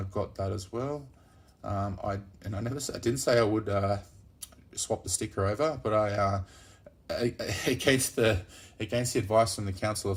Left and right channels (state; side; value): identical; both; correlation 1.00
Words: got that as well. I didn't say I would swap the sticker over, but against the advice from the Council